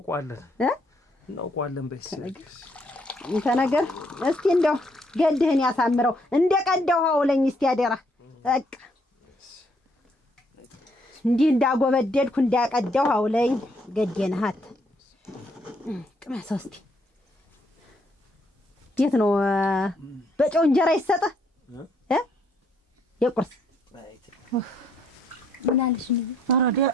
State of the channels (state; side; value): normal; both; correlation 0.70